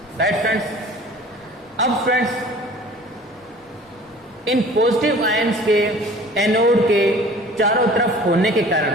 राइट फ्रेंड्स, अब फ्रेंड्स इन पॉजिटिव आयंस के एनोड के चारों तरफ होने के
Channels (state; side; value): normal; both; correlation 0.46